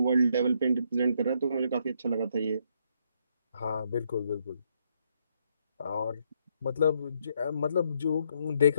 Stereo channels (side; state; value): both; inverted; correlation -0.73